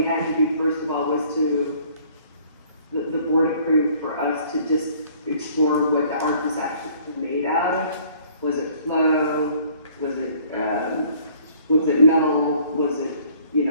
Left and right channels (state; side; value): inverted; both; correlation -0.58